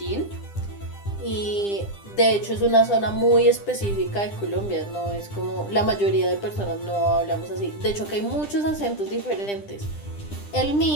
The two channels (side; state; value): right; late; 10 ms